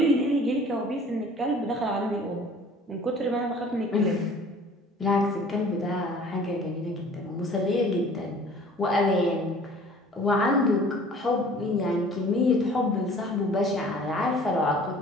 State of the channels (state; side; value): normal; both; correlation 0.50